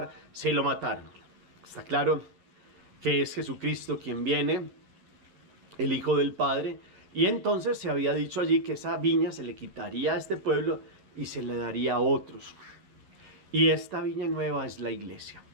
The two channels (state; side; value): late; left; 11 ms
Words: se lo mataron. Está claro que es Jesucristo quien viene, el Hijo del Padre, y entonces se había dicho allí que esa viña se le quitaría a este pueblo y se le daría a otros. Y esta viña nueva es la iglesia.